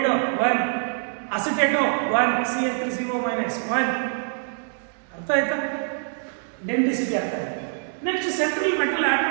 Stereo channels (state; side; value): silent; left; digital silence